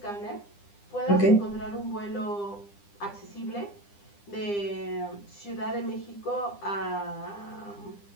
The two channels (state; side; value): late; right; 9.9 ms